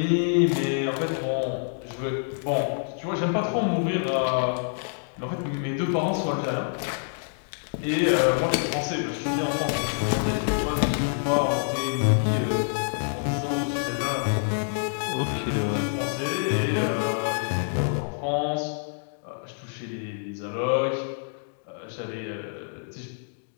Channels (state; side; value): silent; right; digital silence